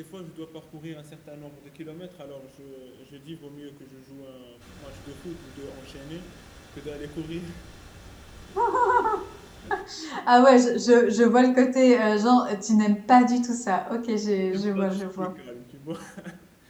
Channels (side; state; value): both; identical; correlation 1.00